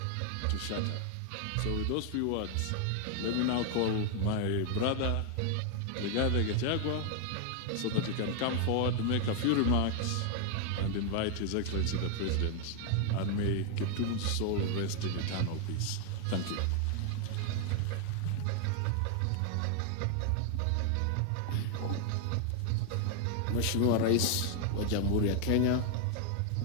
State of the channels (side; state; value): both; different; correlation 0.00